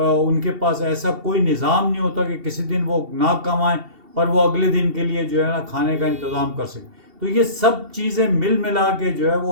کے پاس ایسا کوئی نظام نہیں ہوتا کہ کسی دن وہ نہ کمائیں اور وہ اگلے دن کے لیے جو ہے نا کھانے کا انتظام کر سکیں، تو یہ سب چیزیں مل ملا کے جو ہے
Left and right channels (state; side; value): late; left; 2.7 ms